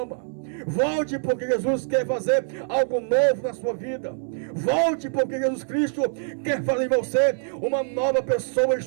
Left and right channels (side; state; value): left; silent; 62 dB below the other